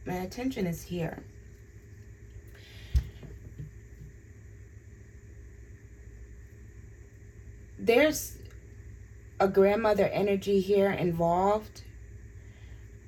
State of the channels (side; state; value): both; identical; correlation 1.00